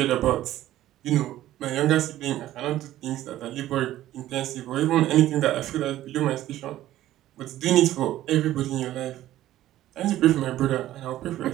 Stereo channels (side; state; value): left; quieter; 13.9 dB